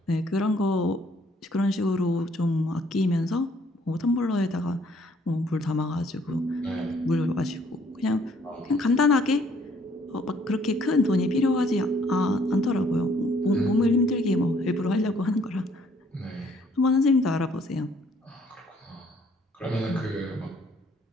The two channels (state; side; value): normal; both; correlation 0.63